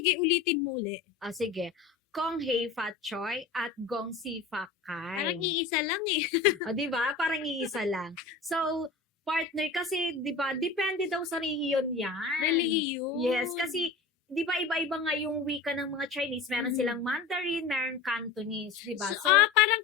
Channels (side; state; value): right; quieter; 4.4 dB